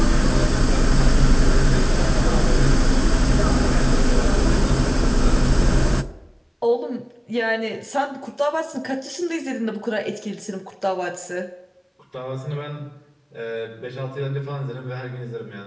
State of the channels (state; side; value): identical; both; correlation 1.00